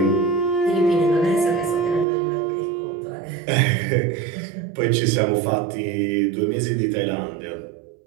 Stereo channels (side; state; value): left; drops out; at 2.1 s